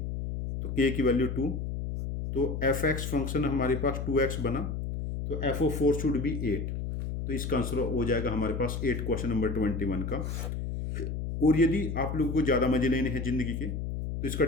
तो के की वैल्यू 2, तो एफ एक्स फंक्शन हमारे पास 2x बना, तो एफ ओ 4 शुड बी 8, तो इसका आंसर हो जाएगा हमारे पास 8 क्वेश्चन नंबर 21 का। और यदि आप लोगों को ज़्यादा मजे लेने हैं जिंदगी के, तो इसका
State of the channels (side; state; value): left; noise; hum, 4 dB below the sound